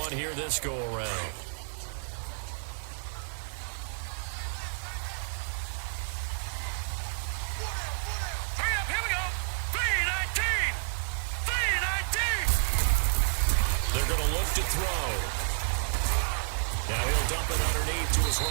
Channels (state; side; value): silent; left; 58 dB below the other